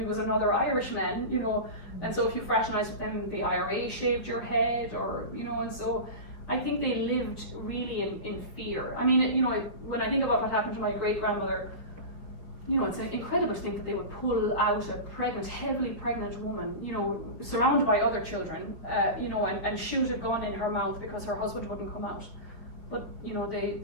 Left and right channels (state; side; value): late; right; 5.0 ms